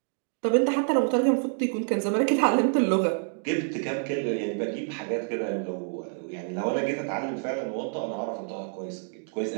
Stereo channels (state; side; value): silent; left; digital silence